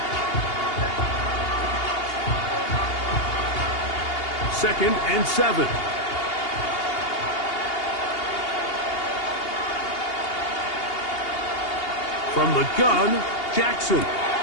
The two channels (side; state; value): right; late; 2.8 ms